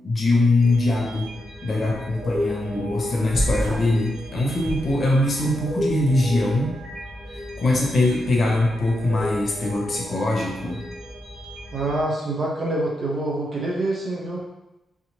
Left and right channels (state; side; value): normal; both; correlation 0.85